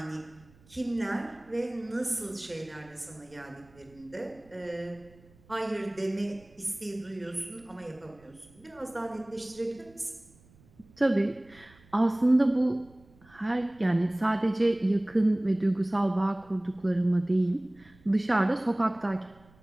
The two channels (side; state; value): right; noise; rumble, 28 dB below the sound